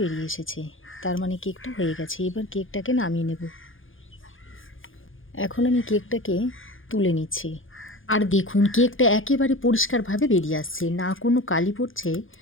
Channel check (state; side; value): late; right; 0.58 ms